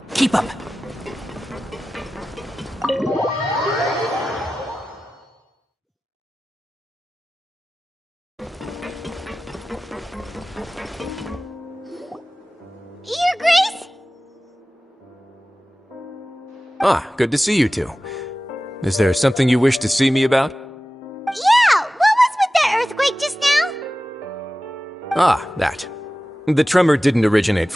Keep up. Your Grace? Ah, good to see you two. Is there something you wish to see me about? Yeah, what was with that earthquake just now? Ah, that. The tremor didn't originate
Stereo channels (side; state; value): both; normal; correlation 0.96